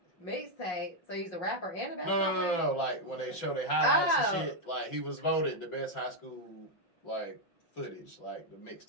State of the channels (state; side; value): late; right; 5.6 ms